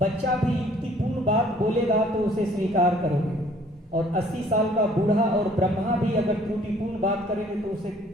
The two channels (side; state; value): both; normal; correlation 0.57